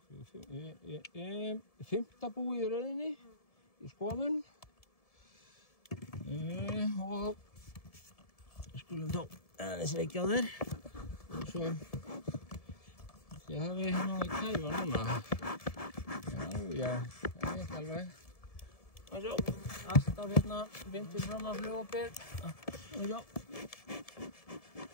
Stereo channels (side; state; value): right; late; 1.7 ms